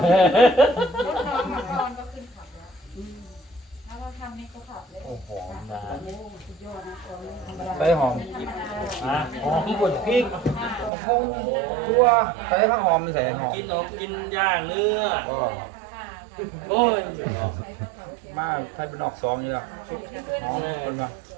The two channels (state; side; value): drops out; left; at 10.9 s